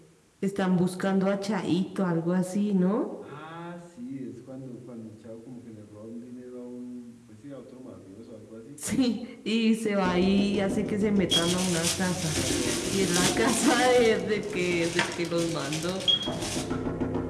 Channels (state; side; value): identical; both; correlation 1.00